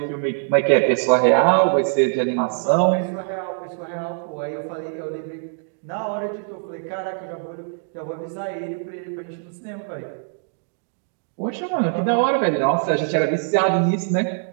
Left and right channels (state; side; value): silent; left; digital silence